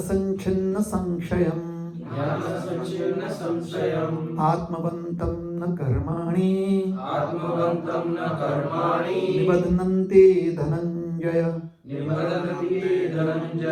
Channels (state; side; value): identical; both; correlation 1.00